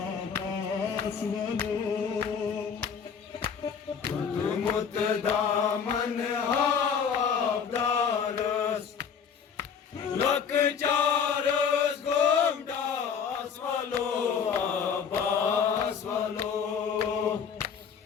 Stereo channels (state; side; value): quieter; right; 6.9 dB